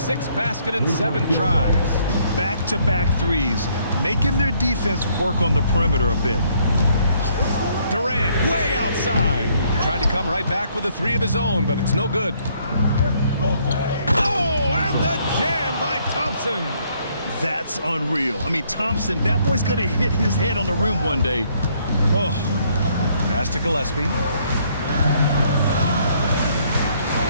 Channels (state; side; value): inverted; both; correlation -0.67